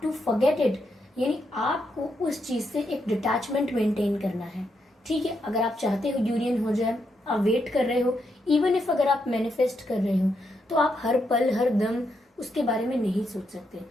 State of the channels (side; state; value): both; normal; correlation 0.81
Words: to forget it. यानी आपको उस चीज से एक डिटैचमेंट मेंटेन करना है। ठीक है, अगर आप चाहते हो यूनियन हो जाए, आप वेट कर रहे हो, इवन इफ अगर आप मैनिफेस्ट कर रहे हो, तो आप हर पल हर दम उसके बारे में नहीं सोच सकते।